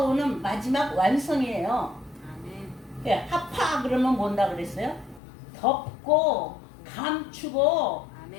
마지막 완성이에요. 아멘. 하파 그러면 뭔다 그랬어요? 덮고 감추고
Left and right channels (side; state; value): right; drops out; at 5.2 s